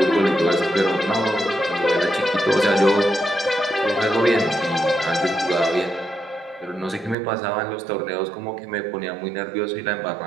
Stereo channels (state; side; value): drops out; left; at 7.2 s